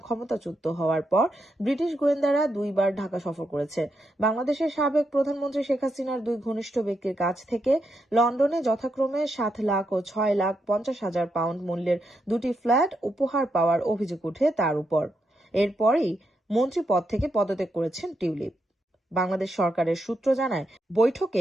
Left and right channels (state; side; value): normal; both; correlation 0.82